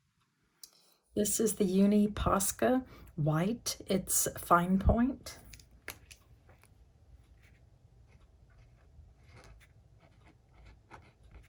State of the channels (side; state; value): both; identical; correlation 1.00